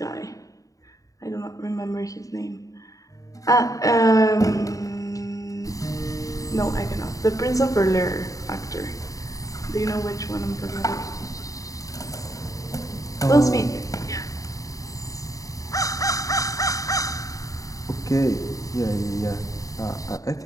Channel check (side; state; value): right; late; 0.16 ms